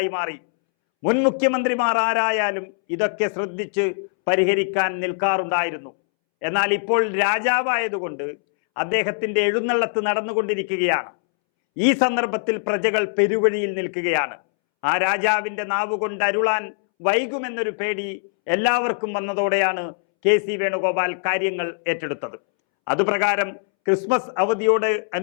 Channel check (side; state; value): right; silent; 64 dB below the other